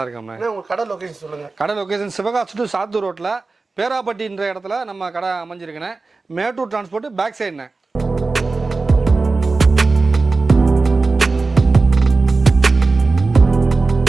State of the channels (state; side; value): quieter; left; 3.8 dB